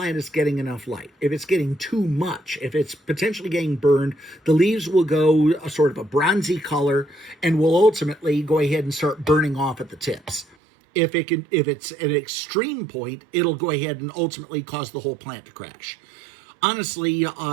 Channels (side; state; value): left; drops out; at 10.6 s